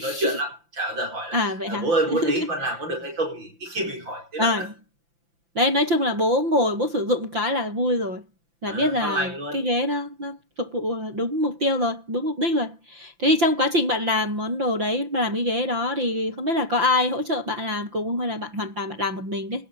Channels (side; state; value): left; late; 5.9 ms